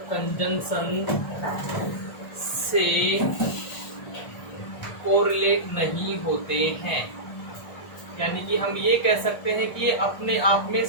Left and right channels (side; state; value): right; late; 1.4 ms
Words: कंजंक्शन से कोरिलेट नहीं होते हैं। यानी कि हम ये कह सकते हैं कि ये अपने आप में